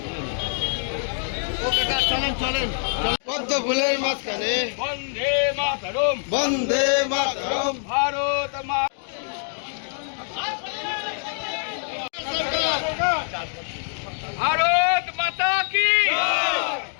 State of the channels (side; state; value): right; silent; 62 dB below the other